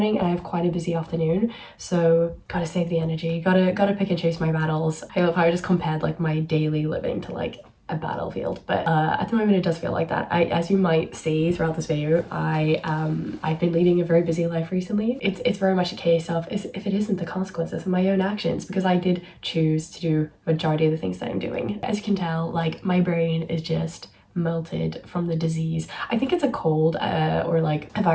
and I have quite a busy afternoon, so gotta save the energy, gotta pick and choose my battles. I love how I just compared like my daily living to like a battlefield, but at the moment it does feel like that. As you might see throughout this video, I've been leading a very busy life recently. It's very much a case of if it isn't the consequences of my own actions, because I did choose to do majority of the things that I'm doing. As you can tell, like my brain is just melted from the disease. I think it's a cold or like a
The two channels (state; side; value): identical; both; correlation 1.00